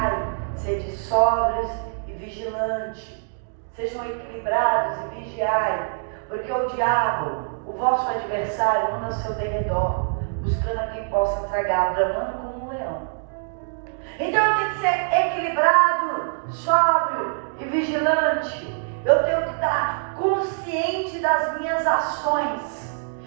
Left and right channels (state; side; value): silent; left; digital silence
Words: sede sóbrios e vigilantes. Sejam equilibrados e vigiai, porque o diabo, o vosso adversário, anda ao seu derredor, buscando a quem possa tragar, bramando como um leão. Então eu tenho que ser equilibrado, sóbrio e vigilante. Eu tenho que estar consciente das minhas ações.